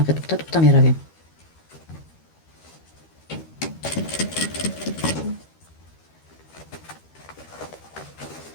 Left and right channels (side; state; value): right; late; 13 ms